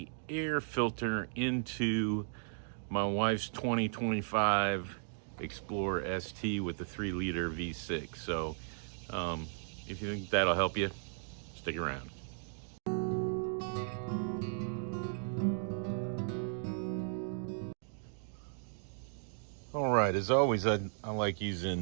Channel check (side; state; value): left; silent; digital silence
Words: air filter into my wife's 2025 Explorer ST with the 3-liter V6. So if you think that'll help you, stick around. All right, as always, I like